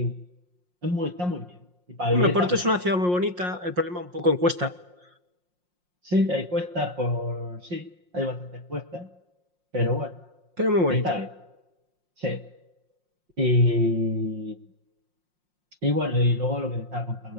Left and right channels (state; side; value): late; left; 5.6 ms